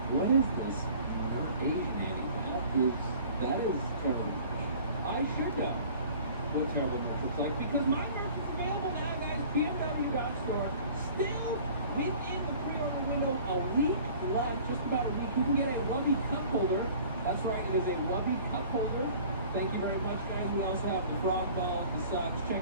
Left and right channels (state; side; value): inverted; both; correlation -0.48